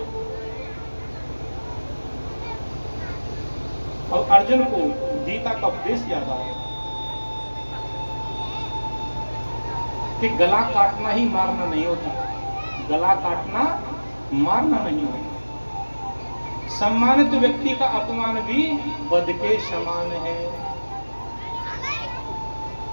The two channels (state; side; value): inverted; both; correlation -1.00